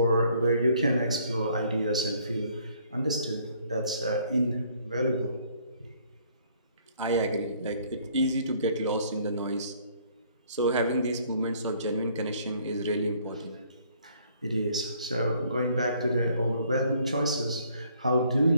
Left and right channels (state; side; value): inverted; both; correlation -0.62